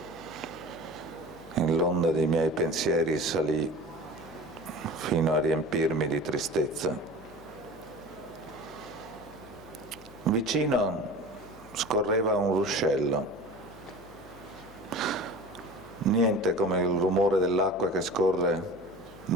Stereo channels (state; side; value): noise; left; hum, 21 dB below the sound